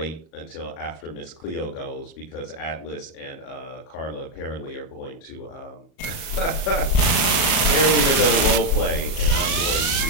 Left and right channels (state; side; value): late; right; 37 ms